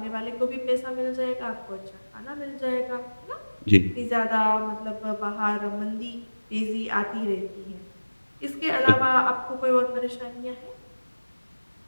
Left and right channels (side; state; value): both; inverted; correlation -1.00